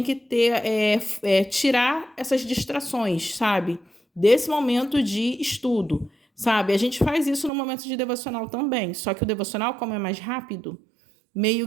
que ter tirar essas distrações, sabe? Desse momento de estudo, sabe? A gente faz isso no momento de devocional também, só que o devocional, como é mais rápido,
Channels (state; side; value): drops out; left; at 7.5 s